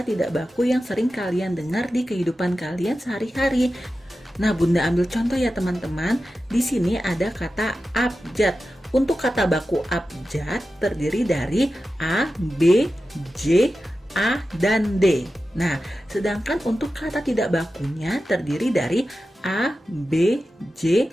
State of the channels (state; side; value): normal; both; correlation 0.93